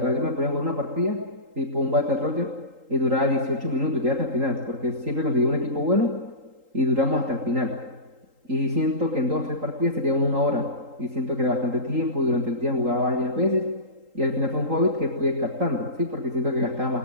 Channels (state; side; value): late; left; 3.8 ms